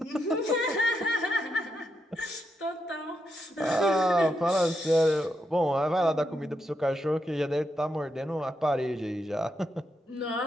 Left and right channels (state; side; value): normal; both; correlation 0.83